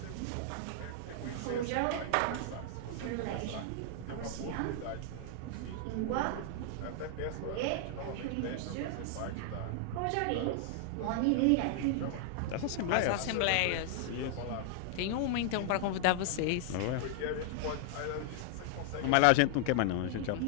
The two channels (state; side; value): different; both; correlation 0.00